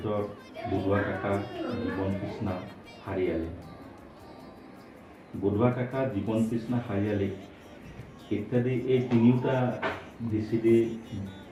বুধোৱা কাকা, জীৱন কৃষ্ণা, হাৰিয়ালি। বুধোৱা কাকা, জীৱন কৃষ্ণা, হাৰিয়ালি ইত্যাদি এই তিনিওটা VCD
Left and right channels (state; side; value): identical; both; correlation 1.00